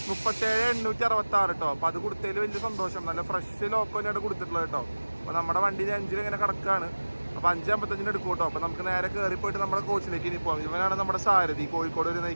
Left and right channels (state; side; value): inverted; both; correlation -1.00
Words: 37,866 കേട്ടോ. അപ്പോൾ അത് കൊടുത്തതിൽ വലിയ സന്തോഷം. നല്ല ഫ്രഷ് ലോക്കോ തന്നെയാണ് കൊടുത്തിട്ടുള്ളത് കേട്ടോ. അപ്പോൾ നമ്മുടെ വണ്ടിയിൽ 5 ഇങ്ങനെ കിടക്കുകയാണ്. അപ്പോൾ 5:55 എടുക്കും കേട്ടോ. അപ്പോൾ നമുക്ക് നേരെ കയറി പോയിട്ട് നമ്മുടെ കോച്ചിലേക്ക് ഇനി പോകാം. ഇവനാണ് നമ്മുടെ സാരഥി, കോഴിക്കോട് വരെ